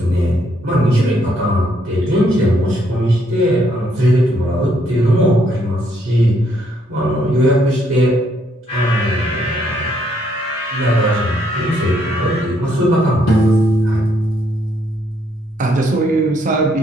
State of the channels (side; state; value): both; normal; correlation 0.71